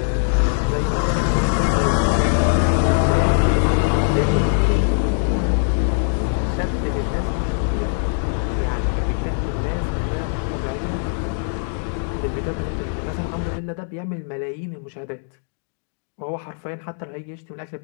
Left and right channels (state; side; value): silent; right; 64 dB below the other